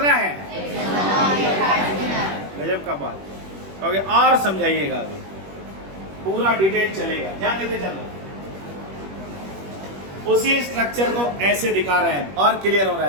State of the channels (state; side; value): late; left; 21 ms